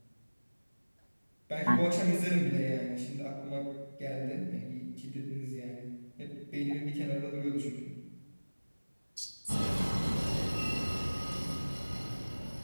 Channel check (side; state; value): both; inverted; correlation -1.00